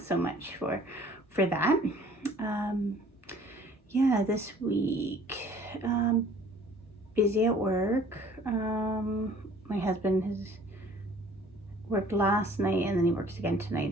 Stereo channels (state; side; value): normal; both; correlation 0.53